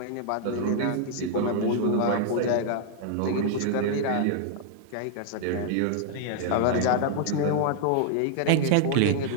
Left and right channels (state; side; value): different; both; correlation -0.01